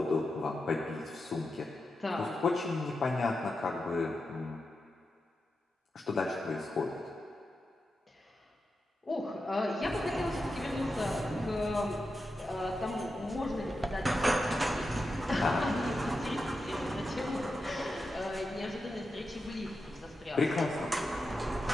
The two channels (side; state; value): both; normal; correlation 0.89